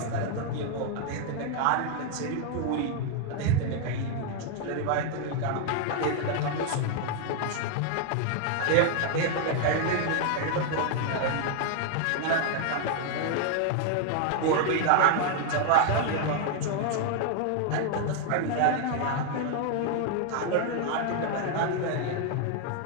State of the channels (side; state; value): both; different; correlation 0.00